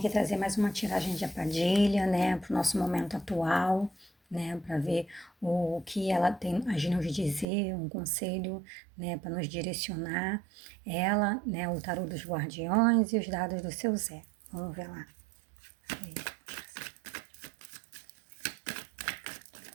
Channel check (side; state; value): left; drops out; at 7.5 s